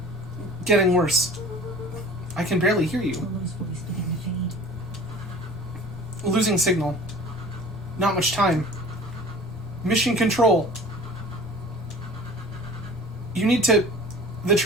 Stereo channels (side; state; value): both; normal; correlation 0.43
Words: Getting worse. I can barely hear you. Rollo's voice began to fade. Losing signal. Not much time. Mission control. You need to... The